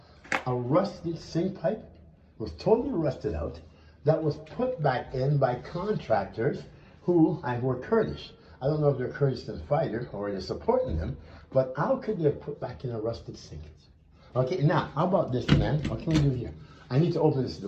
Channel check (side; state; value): both; identical; correlation 1.00